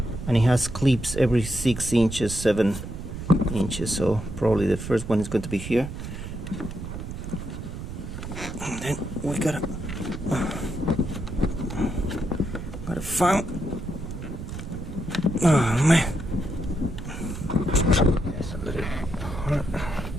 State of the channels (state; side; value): noise; right; rumble, 8 dB below the sound